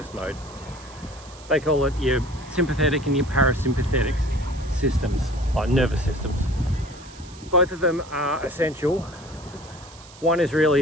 mode. They call it your sympathetic and your parasympathetic systems, like nervous systems. Both of them are essential. One is really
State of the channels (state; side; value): noise; right; hiss, 21 dB below the sound